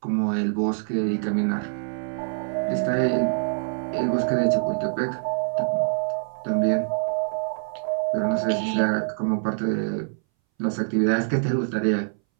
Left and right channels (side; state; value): left; silent; 61 dB below the other